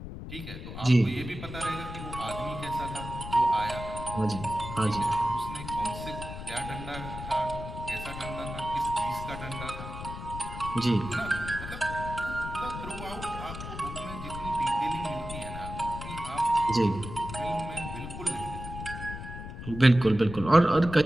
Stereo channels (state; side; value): noise; left; rumble, 9 dB below the sound